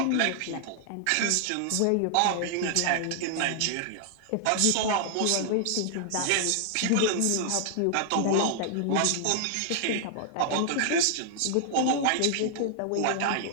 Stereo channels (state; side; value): different; both; correlation 0.00